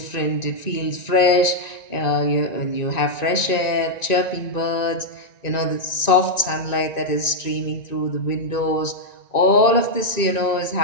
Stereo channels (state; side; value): late; right; 1.9 ms